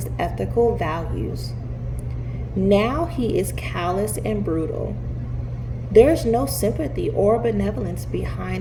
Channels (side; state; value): both; identical; correlation 1.00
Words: ethical values. Now he is callous and brutal. There's no sympathy or benevolence